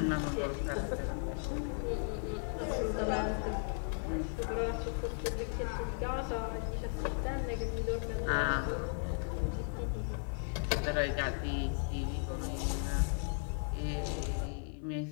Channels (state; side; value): silent; right; 54 dB below the other